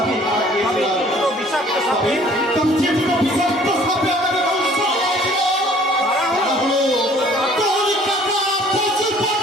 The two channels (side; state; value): both; normal; correlation 0.54